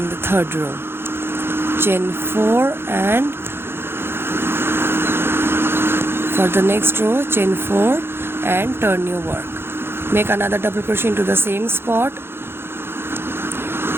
the third row. Chain 4 and for the next row, chain 4 and turn your work. Make another double crochet into the same spot.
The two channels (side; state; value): left; late; 0.11 ms